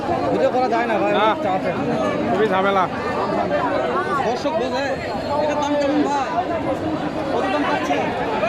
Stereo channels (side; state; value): both; identical; correlation 1.00